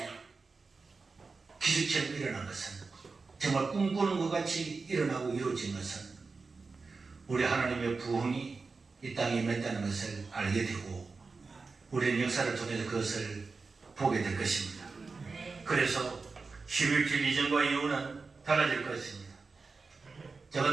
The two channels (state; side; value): quieter; left; 4.3 dB